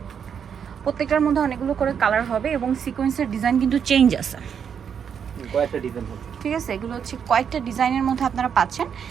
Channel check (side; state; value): left; quieter; 7.5 dB